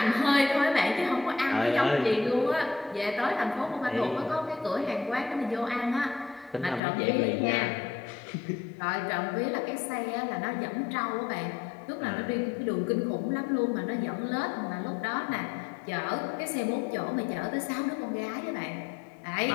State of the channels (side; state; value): right; drops out; at 6.8 s